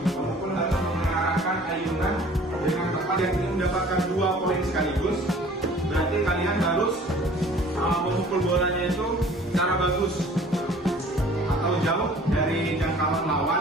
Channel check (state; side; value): normal; both; correlation 0.50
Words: Pemukul harus mengarahkan ayunan dengan tepat. Yang ingin mendapatkan 2 poin sekaligus, berarti kalian harus memukul bolanya itu secara bagus atau jauh dari jangkauan